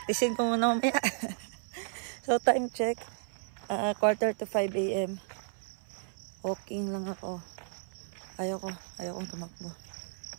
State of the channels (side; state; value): left; silent; 56 dB below the other